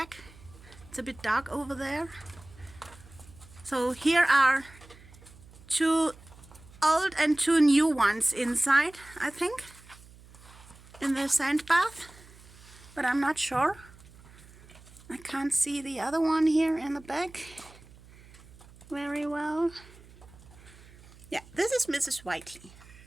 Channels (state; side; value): noise; right; hum, 22 dB below the sound